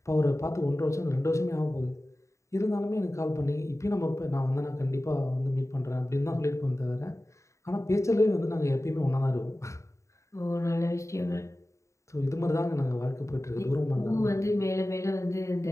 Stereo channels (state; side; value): late; right; 0.14 ms